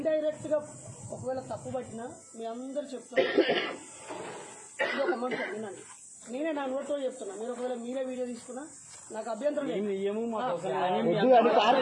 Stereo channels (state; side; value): identical; both; correlation 1.00